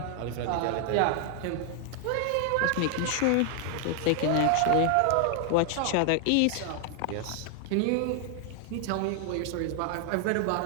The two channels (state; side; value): different; both; correlation 0.00